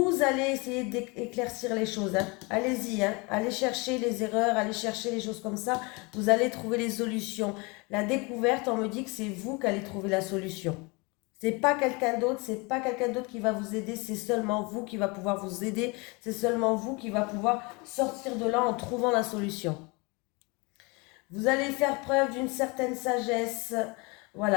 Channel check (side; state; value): right; quieter; 28.1 dB